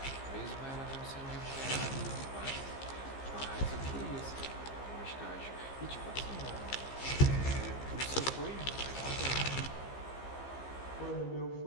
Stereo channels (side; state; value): right; late; 15 ms